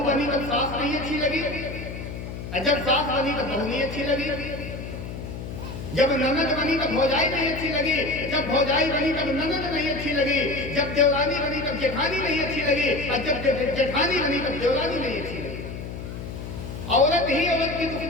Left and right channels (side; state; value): left; noise; hum, 9 dB below the sound